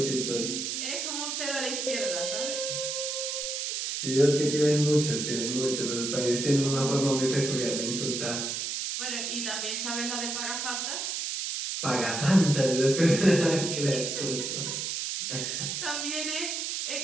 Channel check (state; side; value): noise; right; hiss, 2 dB below the sound